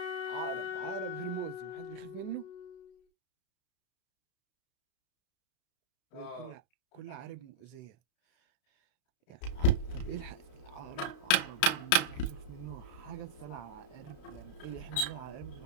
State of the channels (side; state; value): right; late; 32 ms